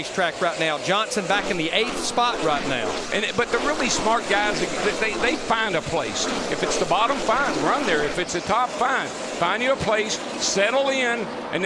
right now. Johnson back in the 8th spot right now. But the really smart guys, they find a place. If it's the bottom, fine, run there. If it's the top, fine. Find you a place, settle in, and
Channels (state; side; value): identical; both; correlation 1.00